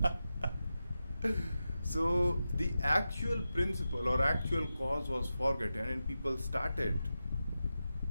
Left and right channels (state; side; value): inverted; both; correlation -0.91